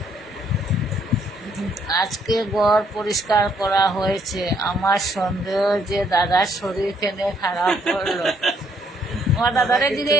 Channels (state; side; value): normal; both; correlation 0.69